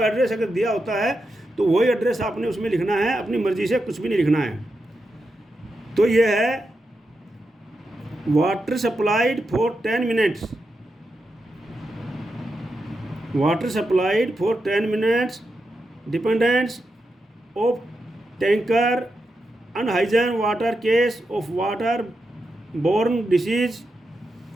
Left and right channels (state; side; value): normal; both; correlation 0.87